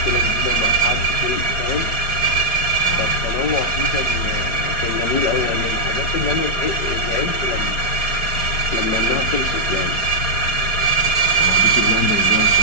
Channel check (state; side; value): late; right; 4.9 ms